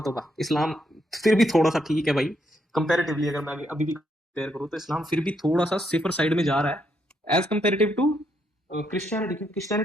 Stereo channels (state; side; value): normal; both; correlation 0.76